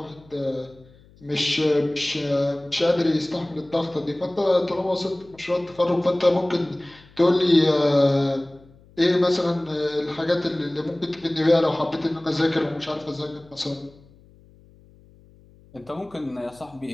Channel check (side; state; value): left; noise; hum, 27 dB below the sound